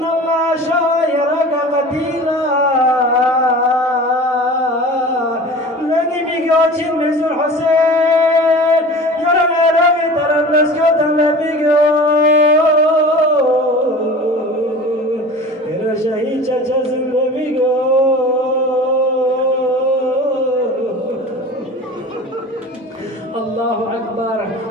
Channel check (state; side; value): normal; both; correlation 0.38